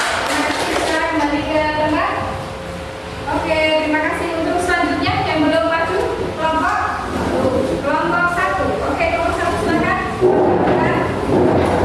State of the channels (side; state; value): both; identical; correlation 1.00